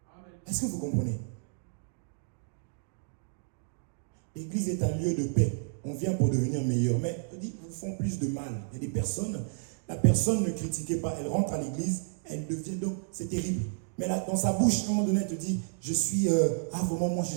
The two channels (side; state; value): left; silent; digital silence